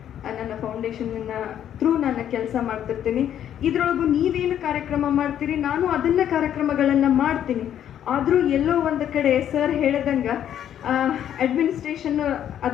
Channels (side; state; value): right; quieter; 10.2 dB